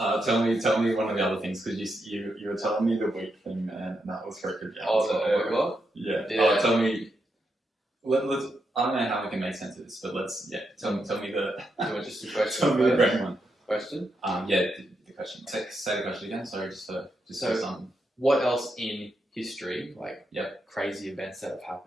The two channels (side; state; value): both; normal; correlation 0.83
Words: me one of the other things, because you were telling me the wheat thing, man, and that was freaking out. Oh, the what? Yeah. Yeah. Tell me. Let's. I don't know how we can make sense of this, but let's. Yeah. Tell me the. You want just a question? Tell me the great one. Question. Yeah. The question. Say the question again. Sorry, just for some. What else in history, like Yep. crazy events that have